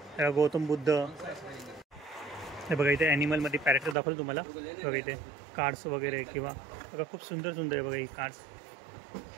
गौतम बुद्ध हे बघा. इथे ॲनिमलमध्ये पॅरेक्टर दाखवलं तुम्हाला बघा. इथे कार्ड्स वगैरे किंवा बघा खूप सुंदर सुंदर आहे बघा ही कार्ड्स.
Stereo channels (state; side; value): drops out; left; at 4.0 s